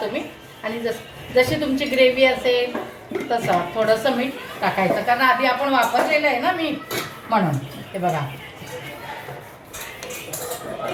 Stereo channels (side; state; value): both; identical; correlation 1.00